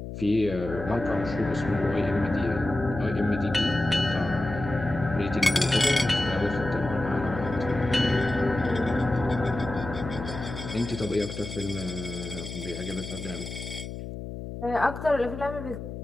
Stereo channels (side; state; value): left; noise; hum, 8 dB below the sound